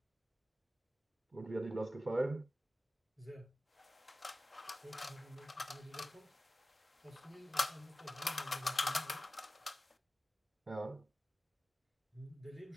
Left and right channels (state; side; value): normal; both; correlation 0.95